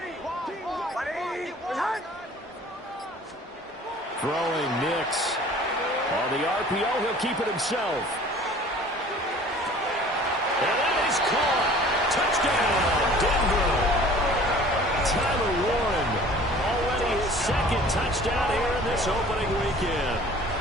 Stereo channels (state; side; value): normal; both; correlation 0.48